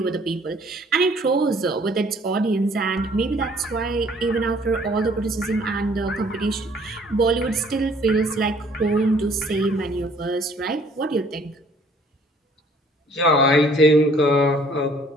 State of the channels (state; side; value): normal; both; correlation 0.58